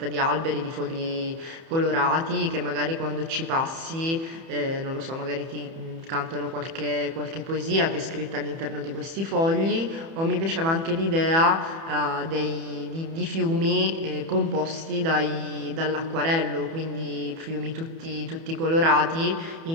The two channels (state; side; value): late; left; 30 ms